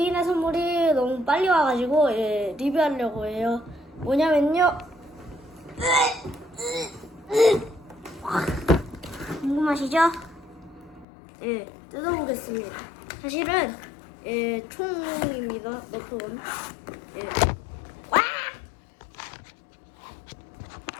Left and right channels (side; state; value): right; drops out; at 11.1 s